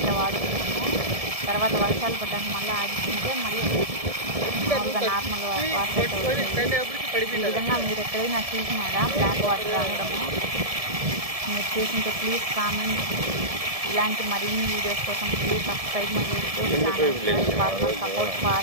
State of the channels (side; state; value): left; late; 1.7 ms